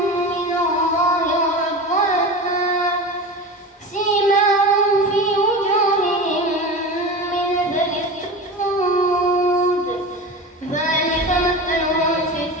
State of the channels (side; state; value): both; normal; correlation 0.29